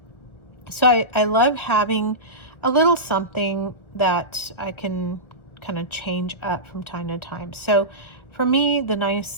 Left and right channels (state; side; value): late; right; 1.2 ms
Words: So I love having a little something that I can kind of change up from time to time. So for me, the